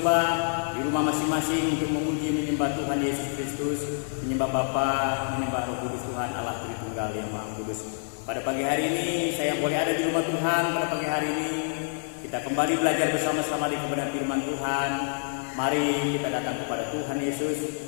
di rumah masing-masing untuk memuji menyembah Tuhan Yesus Kristus, menyembah Bapa, menyembah Roh Kudus Tuhan Allah Tritunggal yang Maha Kudus. Pada pagi hari ini saya boleh ada di rumah Tuhan. Pada pagi hari ini kita kembali belajar bersama-sama di kebenaran firman Tuhan. Mari kita datang kepada Tuhan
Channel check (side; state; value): right; silent; 58 dB below the other